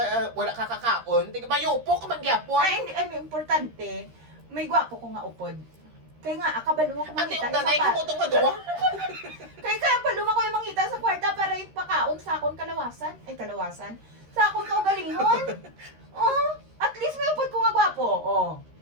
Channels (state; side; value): late; left; 13 ms